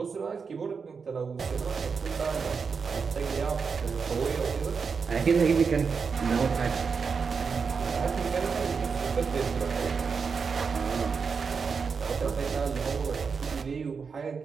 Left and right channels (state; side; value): quieter; left; 5.5 dB